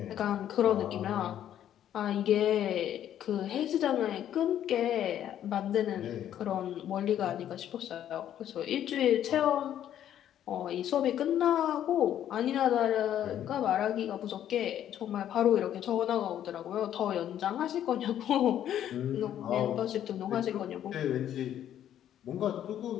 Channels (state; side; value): quieter; right; 10.8 dB